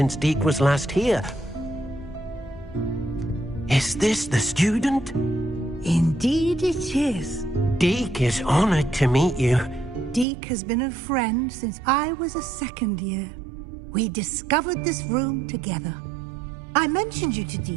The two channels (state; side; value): drops out; left; at 10.2 s